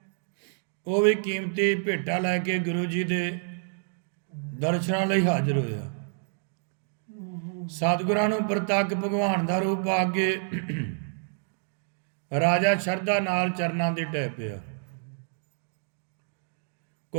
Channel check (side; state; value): left; silent; digital silence